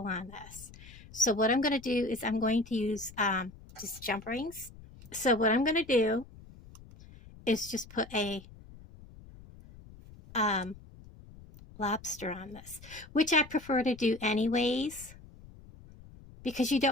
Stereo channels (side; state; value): left; noise; rumble, 20 dB below the sound